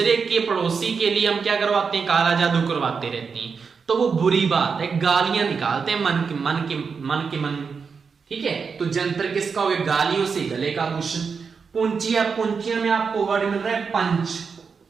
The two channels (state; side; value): quieter; left; 5.6 dB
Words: के पड़ोसी के लिए हम क्या करवाते हैं? काला जादू करवाते रहते हैं। तो वो बुरी बात है, गालियां निकालते हैं मन के। ठीक है, तो जंतर किसका हो गया? गालियों से गले का आभूषण। पुंचिया में आपको वर्ड मिल रहा है पंच,